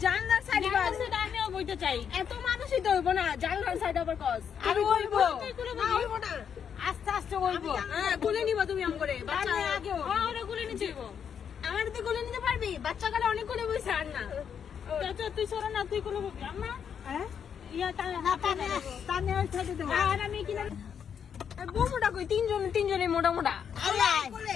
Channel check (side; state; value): right; quieter; 7.7 dB